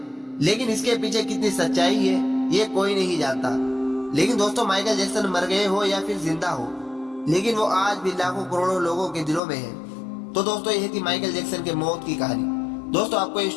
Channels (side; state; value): right; drops out; at 9.4 s